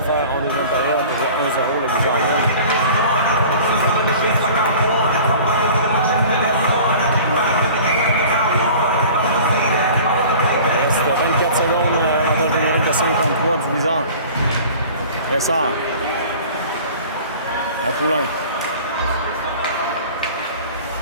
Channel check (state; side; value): inverted; both; correlation -0.43